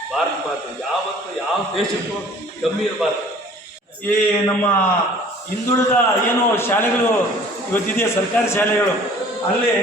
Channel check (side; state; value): both; normal; correlation 0.50